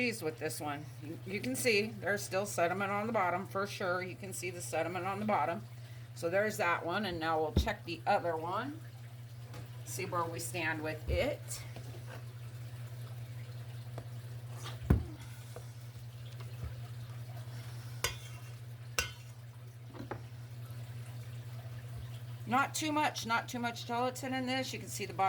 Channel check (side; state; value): both; identical; correlation 1.00